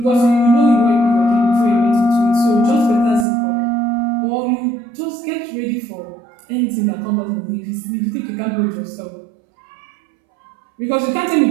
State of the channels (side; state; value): left; drops out; at 3.2 s